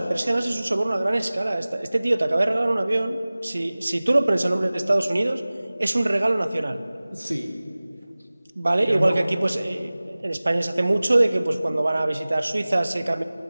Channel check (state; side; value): inverted; both; correlation -0.99